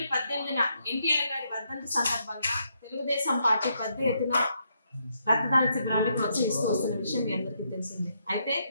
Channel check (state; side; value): inverted; both; correlation -0.77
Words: 18న ఎన్టీఆర్ గారి వర్ధంతి సందర్భంగా తెలుగుదేశం పార్టీ పెద్ద ఎత్తున రక్తదాన శిబిరాన్ని ప్రోత్సహిస్తూ వస్తున్న విషయం మీ అందరికీ తెలిసిందే. అయితే